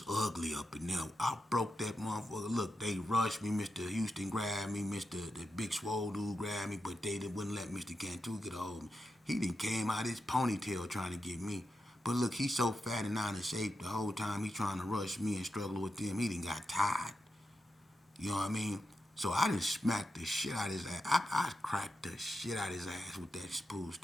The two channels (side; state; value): both; normal; correlation 0.88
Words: ugly up in there. I broke that motherfucker. Look, they rushed me. Mr. Houston grabbed me. The big swole dude grabbed me, but they wouldn't let Mr. Cantu get a hold of me. He done came out his ponytail trying to get me. But look, he's so fat and out of shape the whole time he trying to rush me and struggle with them. He done got tired. You know what I mean? So I done smacked the shit out of his ass. I cracked the shit out of his ass with that pool